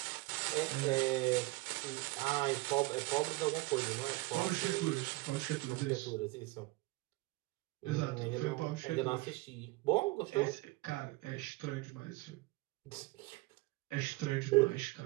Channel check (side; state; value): left; quieter; 22.6 dB